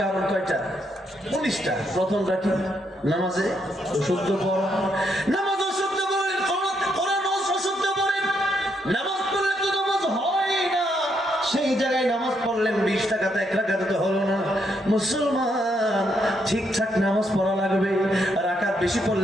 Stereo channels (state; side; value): normal; both; correlation 0.76